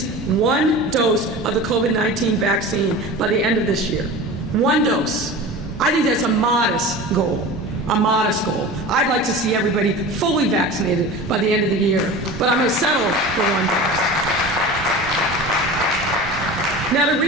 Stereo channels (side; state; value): both; normal; correlation 0.34